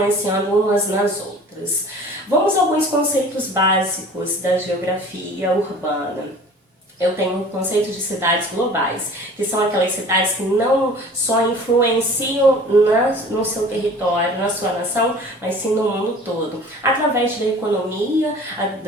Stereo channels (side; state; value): both; normal; correlation 0.45